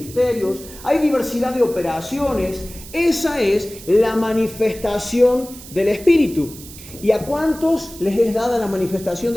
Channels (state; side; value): noise; right; hiss, 16 dB below the sound